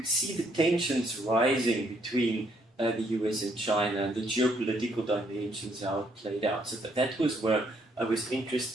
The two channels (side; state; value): both; normal; correlation 0.70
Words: see the tensions rising between the US and China and the geopolitical dimensions, how it played out. So that was where I was